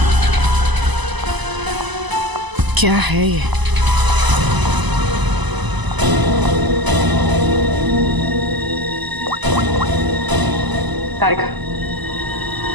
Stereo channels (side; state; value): left; late; 1.0 ms